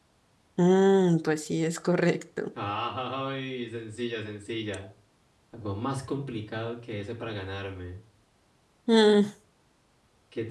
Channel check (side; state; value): both; identical; correlation 1.00